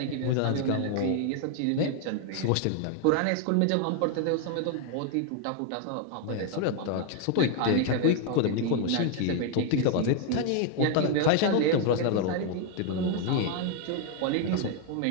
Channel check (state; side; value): different; both; correlation 0.01